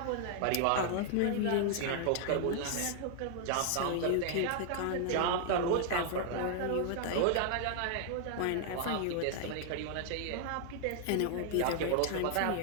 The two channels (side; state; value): both; different; correlation 0.00